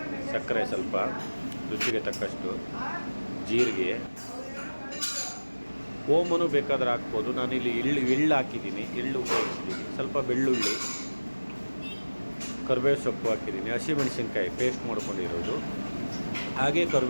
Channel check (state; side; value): inverted; both; correlation -1.00